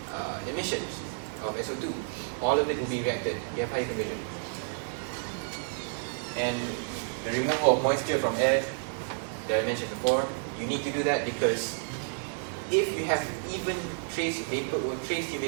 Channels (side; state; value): left; silent; digital silence